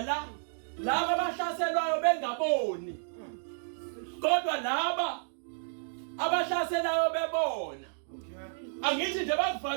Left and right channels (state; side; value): silent; left; digital silence